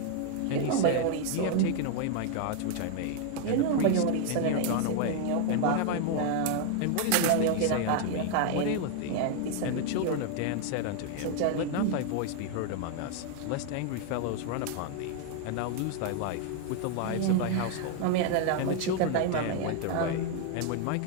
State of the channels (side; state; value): both; different; correlation 0.00